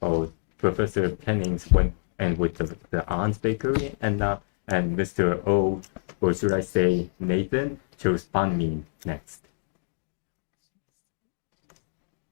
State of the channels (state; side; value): silent; right; digital silence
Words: Professor Pennings went and with the Ann's Bakery and Mr. O, or should I say Nathan, chose banh mi next.